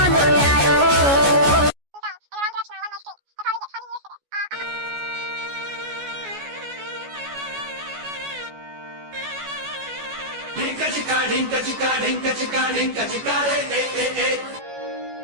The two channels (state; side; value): late; left; 14 ms